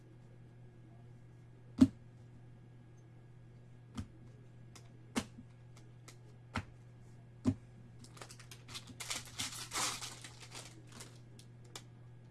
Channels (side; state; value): both; identical; correlation 1.00